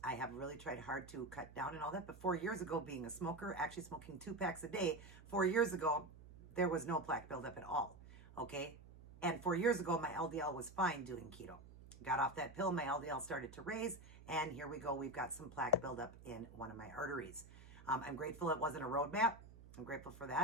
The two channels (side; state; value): right; noise; hum, 18 dB below the sound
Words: I have really tried hard to cut down and all that. But 4 years ago, being a smoker, actually smoking 2 packs a day, 4 years ago, there was no plaque buildup at all, okay? And 4 years ago, my LDL was fine doing keto. Got off that pill, my LDL started to raise, and here we go. We've got some plaque buildup in one of my arteries. I'm grateful it wasn't a roadmap. I'm grateful for